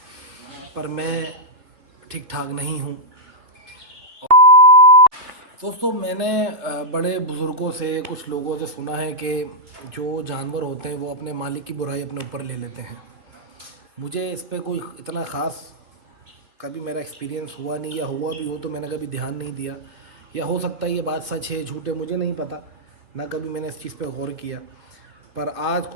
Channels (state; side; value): late; left; 3.0 ms